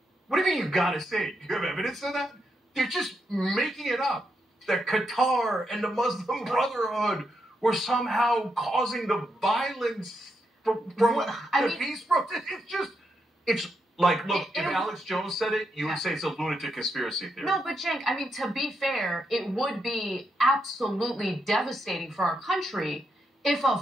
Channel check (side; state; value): both; normal; correlation 0.82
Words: What do you mean you got to say it? Do you have evidence of that? They're just making it up. That Qatar and the Muslim Brotherhood were somehow causing the violence from the peace protest. It's like, look, if Alex Jones said it, you would say it's a lunatic conspiracy theory. No, but Cenk, I mean, to be fair, it would be absolutely devastating for our country if a